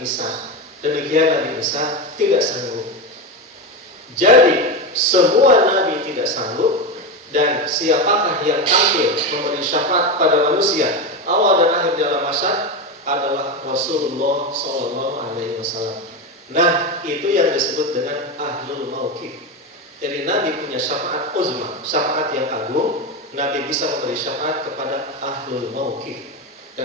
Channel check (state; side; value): normal; both; correlation 0.16